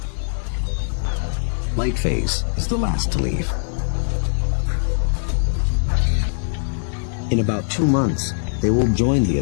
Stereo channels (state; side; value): silent; right; 65 dB below the other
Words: Light phase is the last to leave. In about 2 months, they will join the